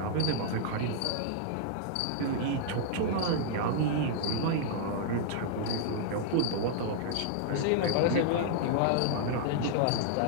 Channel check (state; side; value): different; both; correlation -0.01